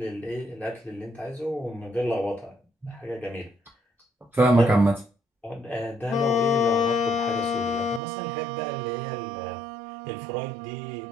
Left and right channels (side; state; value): left; drops out; at 8.0 s